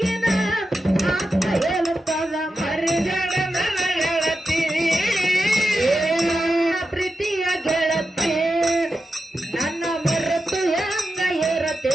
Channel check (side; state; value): both; normal; correlation 0.89